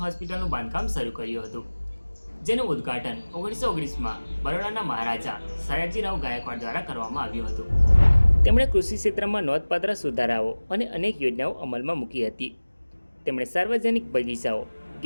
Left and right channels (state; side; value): inverted; both; correlation -1.00